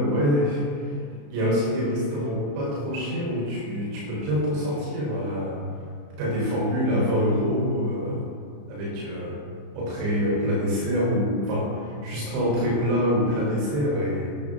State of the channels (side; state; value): left; late; 34 ms